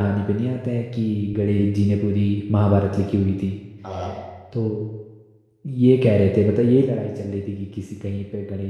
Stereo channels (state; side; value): identical; both; correlation 1.00